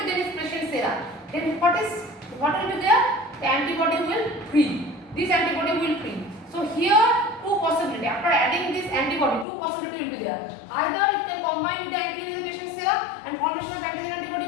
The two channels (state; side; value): drops out; right; at 9.5 s